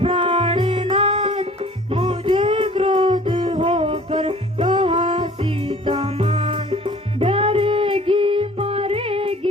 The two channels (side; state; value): both; normal; correlation 0.50